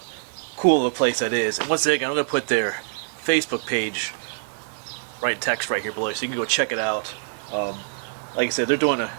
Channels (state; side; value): silent; left; 62 dB below the other